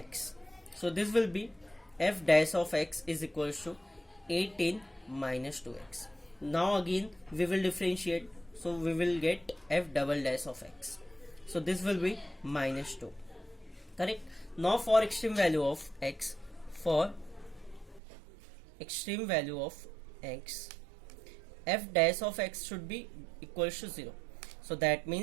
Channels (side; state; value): left; drops out; at 18.0 s